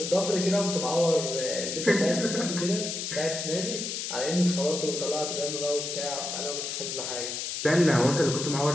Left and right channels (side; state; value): left; noise; hiss, 4 dB below the sound